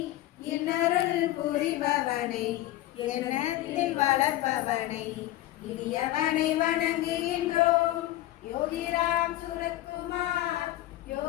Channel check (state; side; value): quieter; right; 15.4 dB